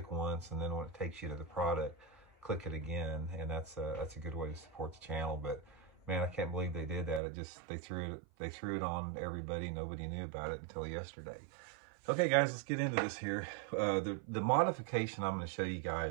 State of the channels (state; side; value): drops out; left; at 7.2 s